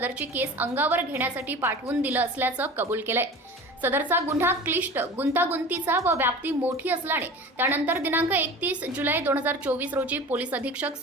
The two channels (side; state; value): both; normal; correlation 0.37